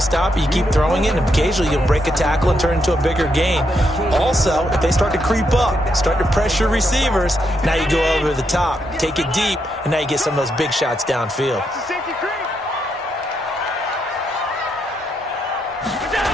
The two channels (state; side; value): normal; both; correlation 0.80